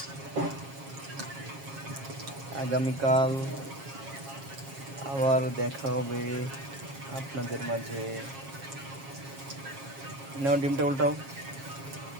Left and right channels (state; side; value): late; left; 7.4 ms